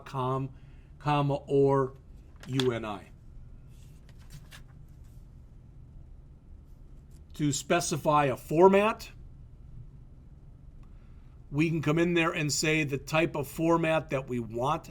comma, or UNI. To specify a format, we can come in there and say the type of format that we want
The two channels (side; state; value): both; identical; correlation 1.00